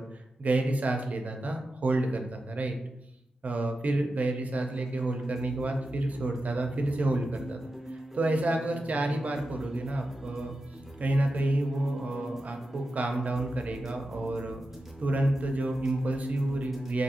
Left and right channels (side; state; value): both; normal; correlation 0.90